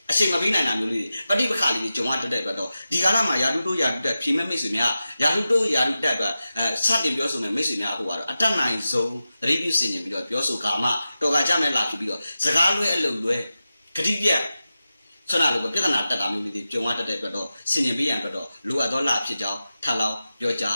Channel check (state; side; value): inverted; both; correlation -0.93